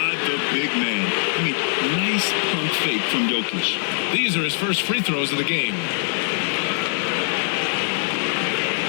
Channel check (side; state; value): right; silent; digital silence